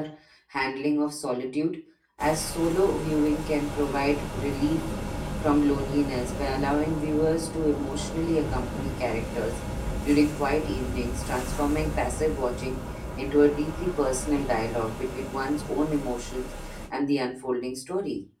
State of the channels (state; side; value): identical; both; correlation 1.00